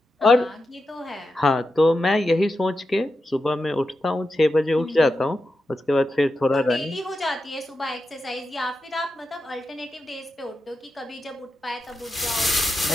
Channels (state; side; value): normal; both; correlation 0.89